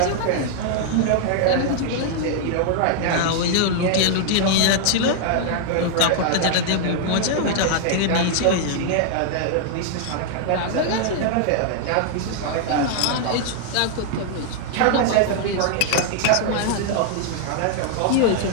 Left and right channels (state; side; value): different; both; correlation 0.00